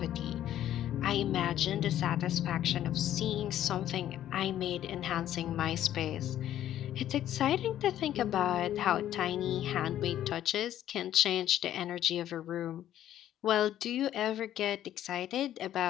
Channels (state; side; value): quieter; right; 11.9 dB